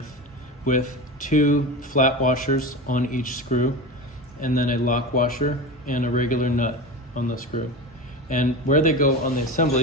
with 2 flat washers on each screw, and then a lock washer and a regular nut on the screw. And where they go on the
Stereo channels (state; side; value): normal; both; correlation 0.26